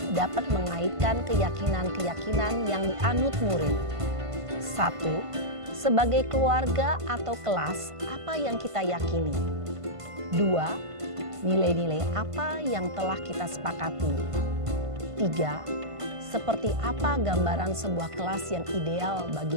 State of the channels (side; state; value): left; late; 1.5 ms